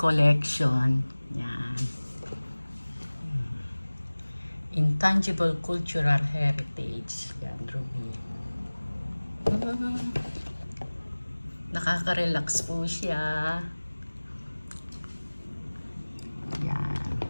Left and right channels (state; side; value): inverted; both; correlation -1.00